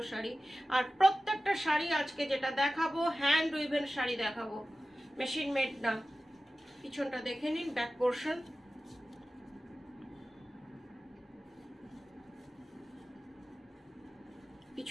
শাড়ি। আর প্রত্যেকটা শাড়ি আজকে যেটা দেখাবো হ্যান্ড উইভেন শাড়ি দেখাবো, মেশিন মেড না। পিছনটা দেখে নিন, ব্যাক পোর্শন,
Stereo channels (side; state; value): both; normal; correlation 0.95